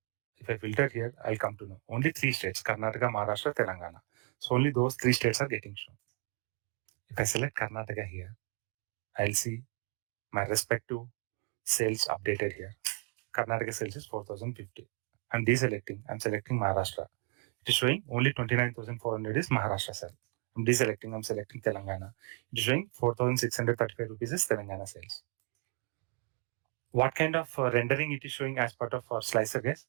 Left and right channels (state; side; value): quieter; left; 29.8 dB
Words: If I filter here, I'll come to know only 3 states: Karnataka, Maharashtra, Telangana. So only those 3 states are getting shown. If I select Karnataka here, I'll see my respective sales updated here. Karnataka sales is 4,050. I'm deselecting. I'm selecting Maharashtra. It is showing only 29,400 is Maharashtra sale. I'm deselecting. I'm selecting Telangana. It is showing 4,635 rupees is Telangana sales. What kind of rendering it is showing as part of our slicer, guys?